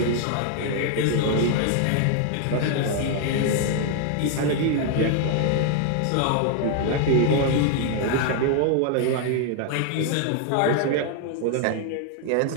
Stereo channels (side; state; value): both; different; correlation 0.00